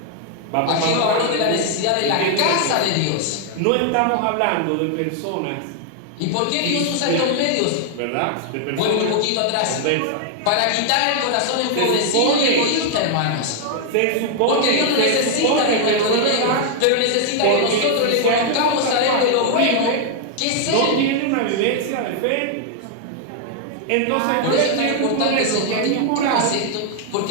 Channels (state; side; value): different; both; correlation 0.00